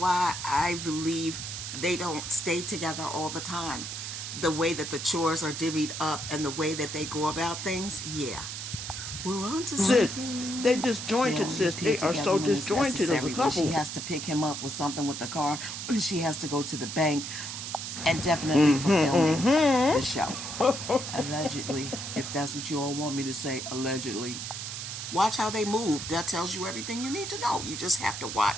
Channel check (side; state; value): right; noise; hiss, 6 dB below the sound